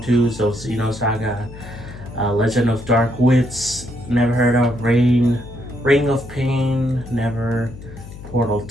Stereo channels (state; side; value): noise; left; hum, 15 dB below the sound